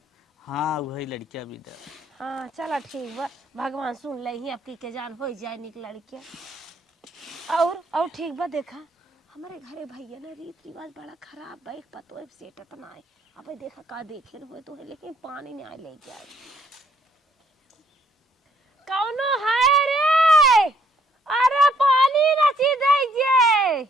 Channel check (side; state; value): both; normal; correlation 0.66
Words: हाँ वही लड़किया भी दे। हाँ चला ठीक बा भगवान सुन ले ही अब के जान हो जाए निक लड़किया। और ठीक बा देखा हमारे घरे भैया ना रीत रिवाज बड़ा खराब बा एक पतो सेटत ना है। अब देखा का देखे हुए तो है लेकिन पानी नहीं ले जाए कौनो है रे। अरे पानी नची दे जे